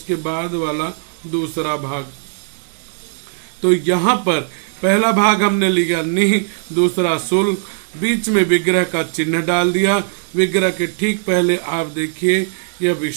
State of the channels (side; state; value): left; silent; 67 dB below the other